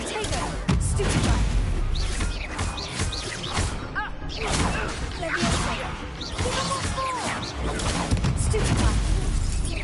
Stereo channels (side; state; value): both; identical; correlation 1.00